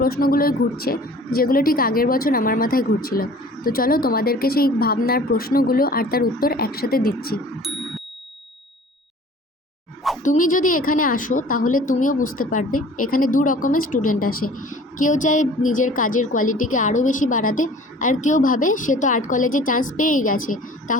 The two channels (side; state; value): both; normal; correlation 0.47